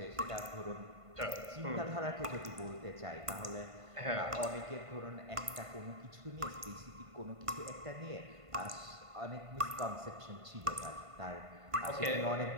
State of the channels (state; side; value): late; left; 1.5 ms